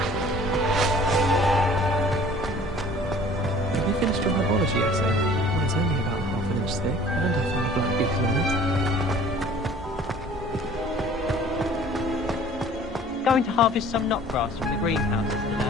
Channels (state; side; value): normal; both; correlation 0.50